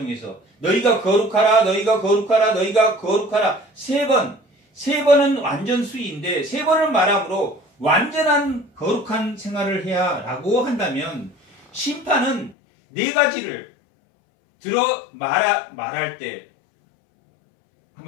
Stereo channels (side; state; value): right; drops out; at 12.6 s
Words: 너희가 거룩하라, 너희가 거룩하라, 너희가 거룩하라. 세 번은 완전 수위인데 세 번을 말함으로 완전한 거룩한 생활을 해야 라고 한다면 심판은 네 가지를 들어 말할 때